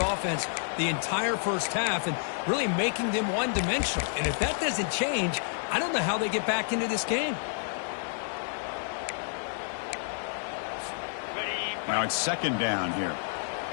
the entire first half and really making them one-dimensional. And if that doesn't change, I don't know how they get back into this game. Now it's second down here.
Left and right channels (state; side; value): silent; right; 58 dB below the other